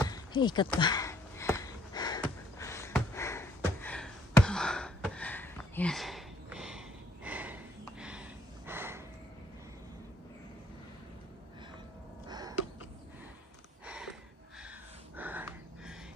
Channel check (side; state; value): both; normal; correlation 0.65